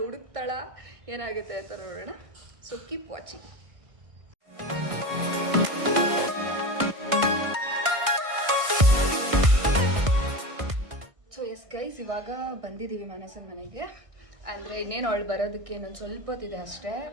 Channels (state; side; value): late; left; 1.6 ms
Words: ಹುಡುಕ್ತಾಳಾ, ಏನಾಗುತ್ತೆ ಅಂತ ನೋಡೋಣ. So keep watching. So yes guys, ಇವಾಗ ಬಂದಿದ್ದೀವಿ ಮನಸ್ಸನ ಮನೆಗೆ. ಅಂದರೆ ಇನ್ನೇನು ಅವಳು ಬರೋದಕ್ಕೆ ಇನ್ನೊಂದು ಸ್ವಲ್ಪ ಹೊತ್ತಿದೆ ಅಷ್ಟೇ,